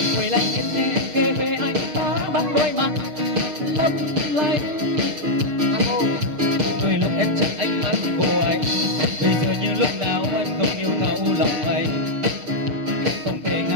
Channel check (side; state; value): left; late; 6.6 ms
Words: quay lại nhìn kể về anh ta bằng đôi mắt lấp lánh. Đôi lúc em chắc ánh mắt của anh, bây giờ như lúc nào anh không yêu thấu lòng anh. Không thể